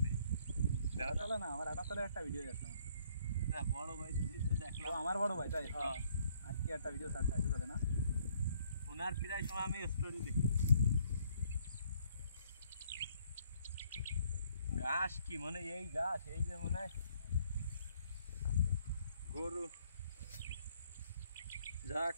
দেখা চলে না আমার 78 একটা ভিডিও আছে আমার না বড় ভাই তো দেখলাম আমার বড় ভাই তাই হ্যাঁ আজকে একটা ভিডিও সার্চ আছে চলে না ওনার প্রায় সময় আমি স্টোরি দেখি ঘাস কি মানে এই ঘাস এই যে মনে হয় গরু যাক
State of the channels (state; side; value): inverted; both; correlation -0.65